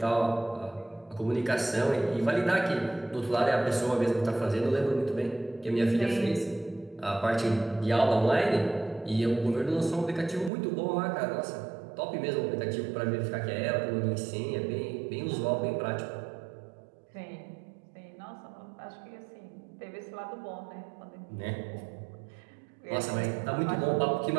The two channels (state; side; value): drops out; left; at 10.5 s